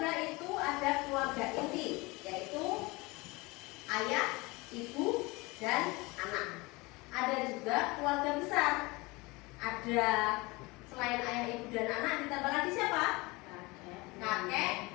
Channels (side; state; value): right; quieter; 24.0 dB